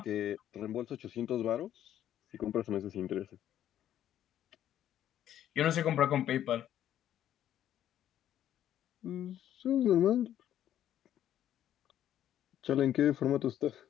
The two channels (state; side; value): quieter; right; 11.2 dB